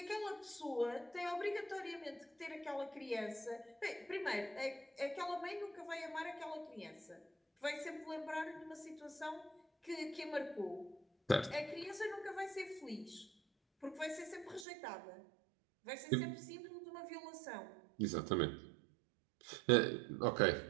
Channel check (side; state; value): left; drops out; at 14.7 s